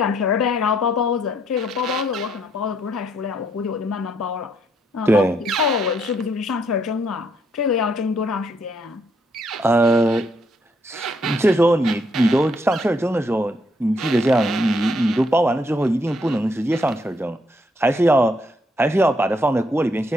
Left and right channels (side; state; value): both; normal; correlation 0.72